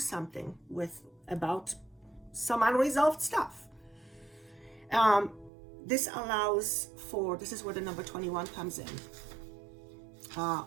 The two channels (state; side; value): drops out; left; at 5.5 s